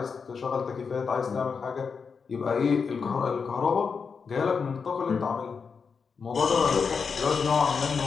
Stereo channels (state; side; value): quieter; right; 5.6 dB